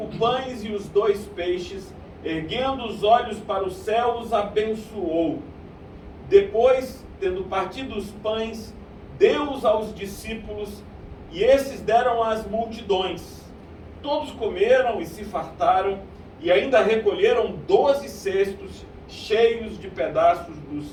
pães e os 2 peixes, erguendo os olhos para o céu, os abençoou. Depois, tendo partido os pães, deu-os aos discípulos, e esses deram às multidões. Todos comeram e se fartaram, e ainda recolheram 12 cestos cheios de pedaços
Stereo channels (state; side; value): identical; both; correlation 1.00